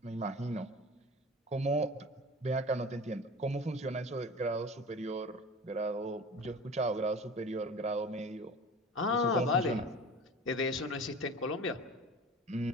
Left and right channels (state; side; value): normal; both; correlation 0.37